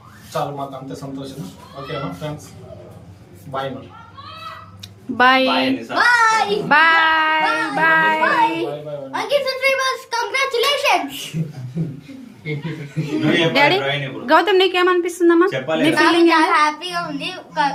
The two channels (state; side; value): identical; both; correlation 1.00